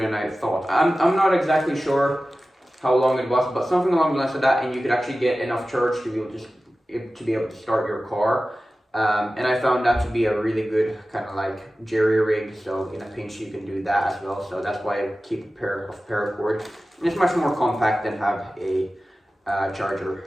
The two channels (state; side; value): normal; both; correlation 0.95